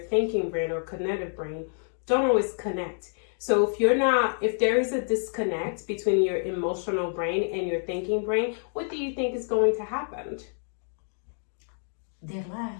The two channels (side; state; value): right; silent; digital silence